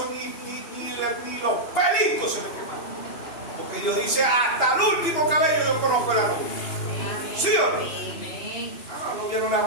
ni los pelitos se le quemaron. Porque Dios dice, hasta el último cabello yo conozco a la novia. ¿Sí o no? A la novia no le va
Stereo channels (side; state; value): right; late; 2.8 ms